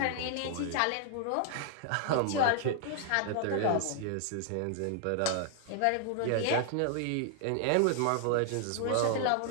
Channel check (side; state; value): both; different; correlation 0.00